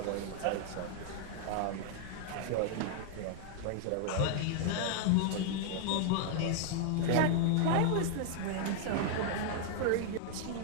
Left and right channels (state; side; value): different; both; correlation -0.01